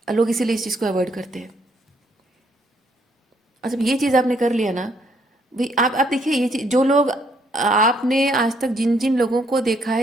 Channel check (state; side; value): normal; both; correlation 0.69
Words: लोग इसीलिए इस चीज़ को अवॉइड करते हैं। और जब ये चीज़ आपने कर लिया ना भाई, आप देखिए, ये चीज़, जो लोग, आपने आज तक जिन जिन लोगों को देखा